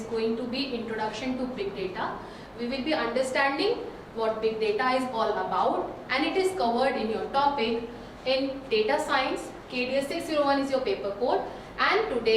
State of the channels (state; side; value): identical; both; correlation 1.00